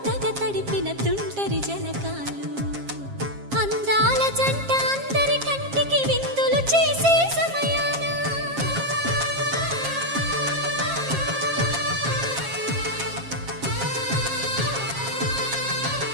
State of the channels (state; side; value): late; left; 7.4 ms